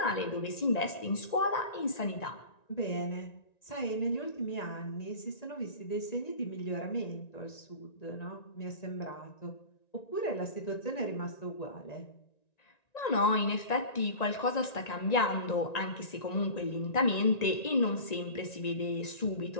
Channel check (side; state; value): right; late; 1.9 ms